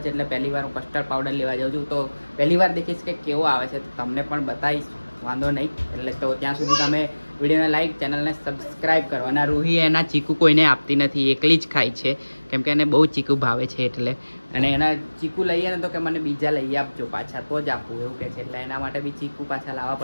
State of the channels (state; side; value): inverted; both; correlation -1.00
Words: છે એટલે પહેલી વાર હું કસ્ટર્ડ પાવડર લેવા જાઉં છું, તો પહેલી વાર દેખીશ કે કેવો આવે છે તો તમને પણ બતાવીશ, વાંધો નહીં। એટલે તો ત્યાં સુધી તમે વિડીયોને લાઈક, ચેનલને સબસ્ક્રાઈબ કરો। અને રૂહી એના ચીકુ કોઈને આપતી નથી, એકલી જ ખાય છે કેમ કે એને બહુ ચીકુ ભાવે છે એટલે। અને એના ચીકુ લઈએ ને તો કે મને બીજા લઈ આપજો પાછા તો જ આપું એવું કહે છે, એટલે એના માટે બી ચીકુ પાછા લાવવા